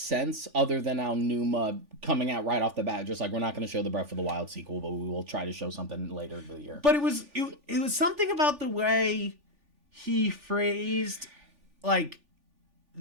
other than Aonuma coming out right off the bat, just like, we're not going to show the Breath of the Wild sequel, but we will try to show something later in the year. But it was something about the way he phrased like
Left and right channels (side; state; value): left; late; 3.4 ms